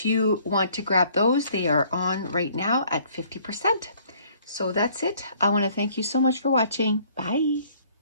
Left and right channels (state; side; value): inverted; both; correlation -0.60